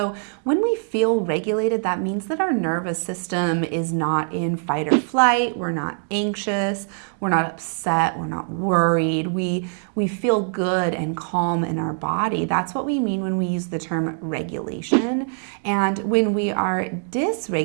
when we feel regulated, that means that our nervous system is not in fight or flight, we're not anxious, we're not upset, we're not worried, we feel good and calm in our body. That's what we mean when we use the term regulation. And when we are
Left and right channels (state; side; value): silent; left; 63 dB below the other